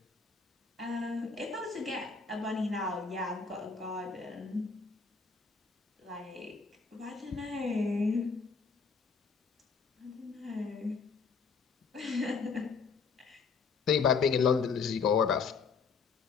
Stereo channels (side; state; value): right; quieter; 5.2 dB